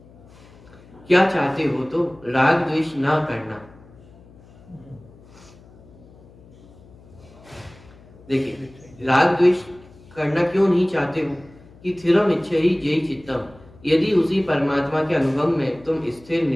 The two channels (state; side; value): noise; left; hum, 24 dB below the sound